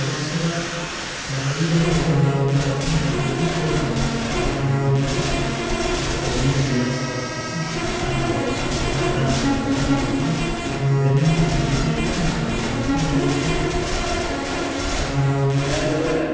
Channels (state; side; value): identical; both; correlation 1.00